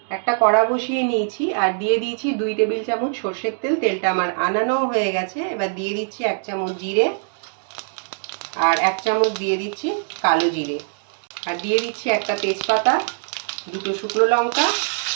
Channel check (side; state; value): left; silent; 64 dB below the other